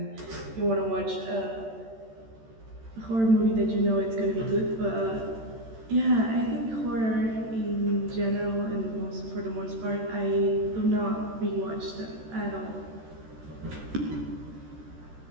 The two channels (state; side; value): late; left; 13 ms